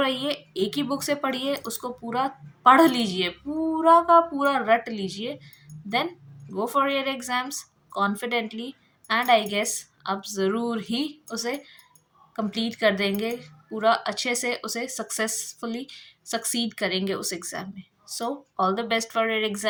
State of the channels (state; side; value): identical; both; correlation 1.00